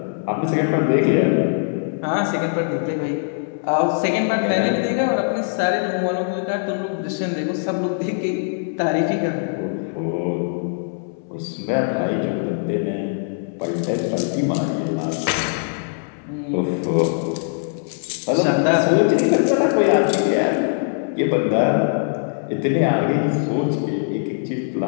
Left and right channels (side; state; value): right; silent; 65 dB below the other